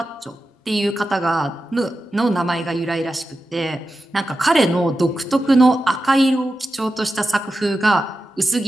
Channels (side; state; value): both; normal; correlation 0.92